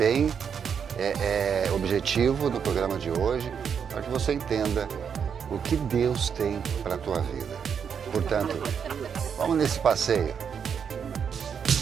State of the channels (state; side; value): quieter; left; 7.2 dB